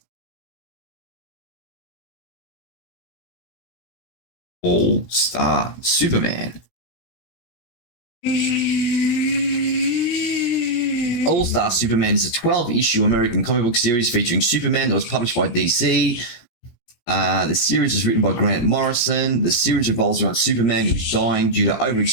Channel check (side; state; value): right; late; 17 ms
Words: All-Star Superman. All-Star Superman is a 12-issue American comic book series featuring Superman that was published by DC. The series is written by Grant Morrison. The series revolves around Superman, who's dying due to